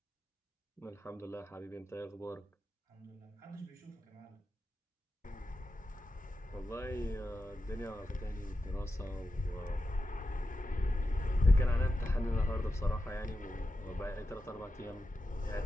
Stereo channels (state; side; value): normal; both; correlation 0.90